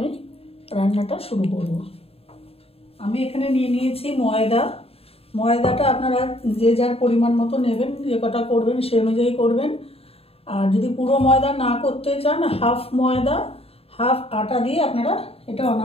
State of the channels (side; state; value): right; late; 0.28 ms